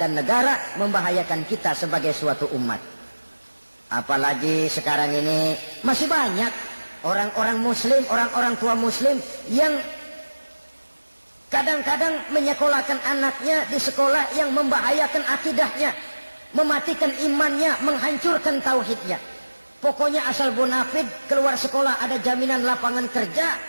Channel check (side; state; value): both; inverted; correlation -1.00